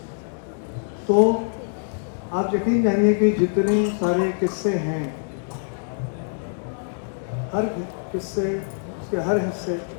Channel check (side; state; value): right; silent; digital silence